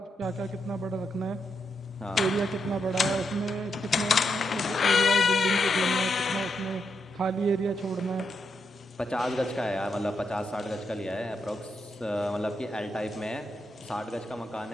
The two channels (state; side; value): normal; both; correlation 0.82